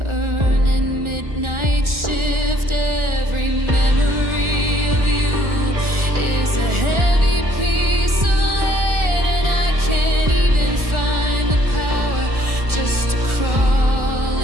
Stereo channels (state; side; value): late; left; 1.4 ms